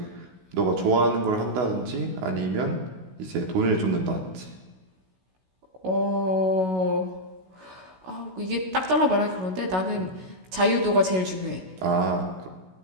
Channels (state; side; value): late; left; 16 ms